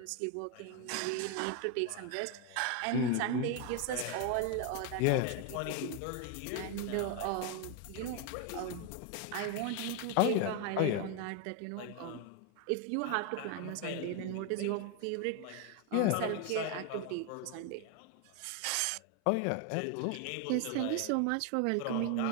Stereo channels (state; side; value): different; both; correlation 0.01